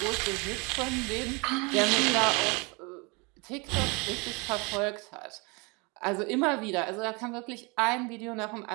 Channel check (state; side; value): quieter; left; 29.2 dB